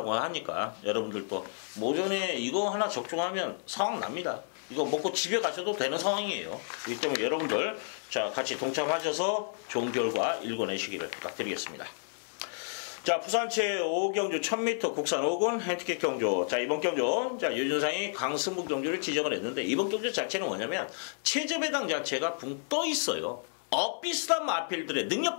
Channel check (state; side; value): silent; right; 57 dB below the other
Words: 하니까 여러분들도 모전에 이거 하나 적중하면 상황 납니다. 이거 먹고 집에 가셔도 되는 상황이에요. 그렇기 때문에 여러분들 자, 같이 동참하셔서 좋은 결과 읽어내시기를 부탁드리겠습니다. 자, 부산체 5경주 1000m 국산 5군 핸디캡 경주. 자, 이번 경주, 자, 유준상이 강승부 경주를 지정을 했는데, 이번 경주 자체는 뭐냐면, 최저 배당 자체가 붕 떠 있어요. 엇비슷한 마필들의, 능력